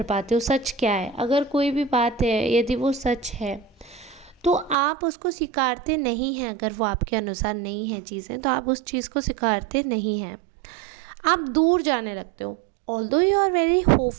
पाते हो सच क्या है। अगर कोई भी बात है, यदि वो सच है, तो आप उसको स्वीकारते नहीं हैं। अगर वो आपके अनुसार नहीं है चीज़ें, तो आप उस चीज़ को स्वीकारते नहीं हैं, आप दूर जाने लगते हो। Although you are very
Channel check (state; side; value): drops out; left; at 4.8 s